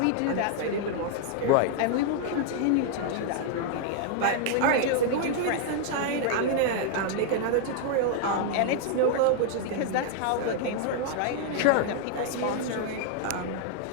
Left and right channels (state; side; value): different; both; correlation 0.00